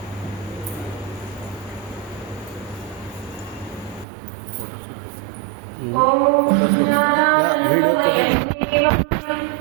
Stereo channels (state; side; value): drops out; left; at 4.0 s